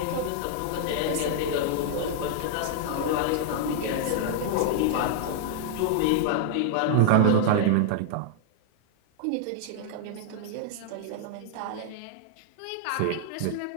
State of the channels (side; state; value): both; different; correlation -0.01